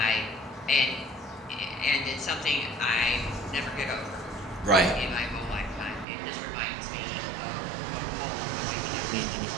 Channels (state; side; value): drops out; left; at 6.1 s